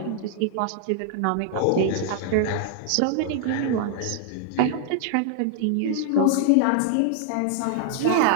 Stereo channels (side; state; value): both; different; correlation 0.00